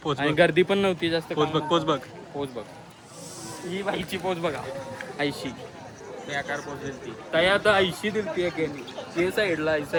पोच आणि बघ. गर्दी पण नव्हती जास्त. पोच बघ पोच बघ पोच बघ, ही बाईची पोच बघा, ऐशी बेकार पोच दिलती काय. आता ऐशी दिलती एकेनी ते साईडला ऐसा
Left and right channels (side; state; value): both; identical; correlation 1.00